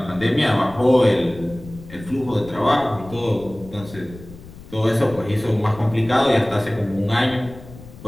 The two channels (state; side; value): noise; left; rumble, 18 dB below the sound